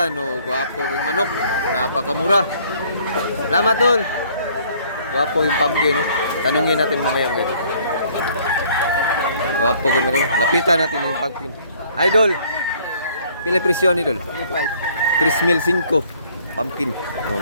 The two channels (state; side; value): inverted; both; correlation -0.59